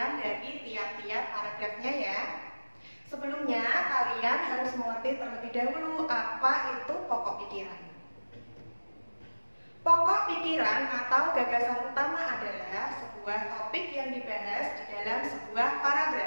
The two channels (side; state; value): both; inverted; correlation -1.00